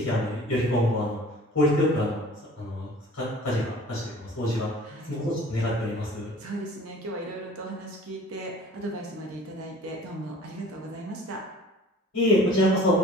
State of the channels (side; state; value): both; normal; correlation 0.47